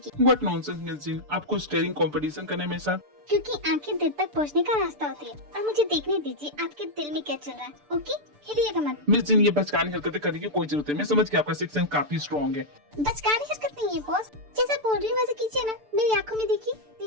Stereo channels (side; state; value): left; late; 6.8 ms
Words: What nonsense, Miss Jean? आपको स्टेरिंग कंपटीशन करना है मेरे साथ? क्योंकि आंखें दिल तक पहुंचने का रास्ता होती है और मुझे देखने दीजिए आपके दिल में क्या चल रहा है, ओके? हिलिएगा मत। मिस जिन, ये बचकानी हरकतें करने की कोई जरूरत है। मैं समझ गया आपका सिक्स सेंस काफी स्ट्रॉन्ग है। बचकानी हरकत नहीं है बॉस, जैसा बोल रही हूँ वैसे कीजिए ना। मेरी आंखों में देखिए,